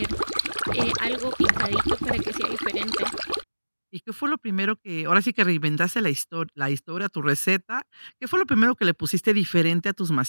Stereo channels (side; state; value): both; inverted; correlation -1.00